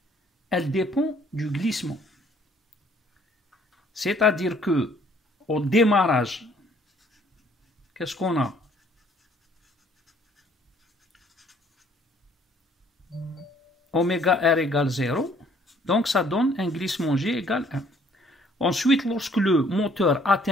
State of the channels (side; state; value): both; normal; correlation 0.61